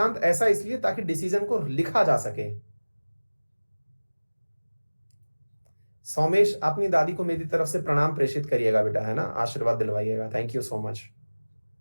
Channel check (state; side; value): inverted; both; correlation -1.00